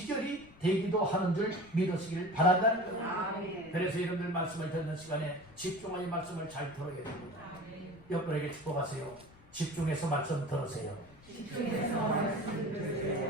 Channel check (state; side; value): noise; left; rumble, 24 dB below the sound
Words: 되기도 하는 줄 믿으시길 바란다는 거예요. 그래서 여러분들 말씀을 듣는 시간에 집중하여 말씀을 잘 들어야 됩니다. 옆분에게 축복하세요. 집중해서 말씀 들으세요.